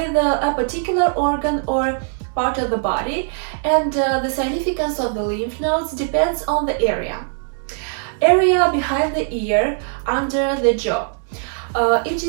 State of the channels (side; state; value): left; silent; digital silence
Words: a particular organ or part of the body, and the significance of the lymph nodes depends on the area. Area behind the ear, under the jaw. It